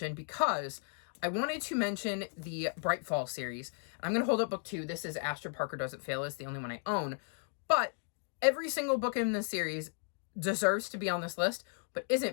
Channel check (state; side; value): silent; right; 54 dB below the other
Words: because I wanted to mention the Bright Fall series. I'm going to hold up book 2. This is Astrid Parker Doesn't Fail. It's the only one I own. But every single book in this series deserves to be on this list, but